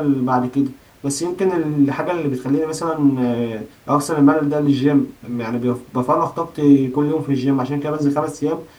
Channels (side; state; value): both; identical; correlation 1.00